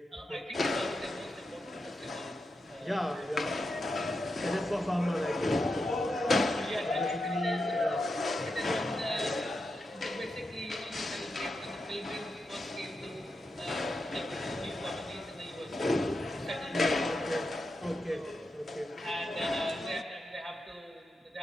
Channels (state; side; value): normal; both; correlation 0.87